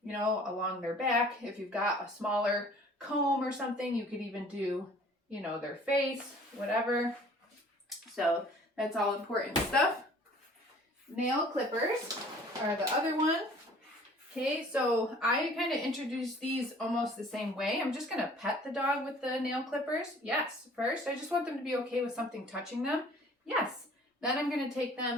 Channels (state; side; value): normal; both; correlation 0.52